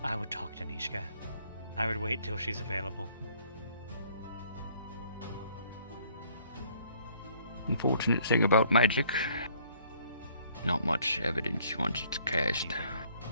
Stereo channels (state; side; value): inverted; both; correlation -0.61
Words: would talk to Nishka. I would wait till she's available. Unfortunate thing about magic, not much evidence once it's cast.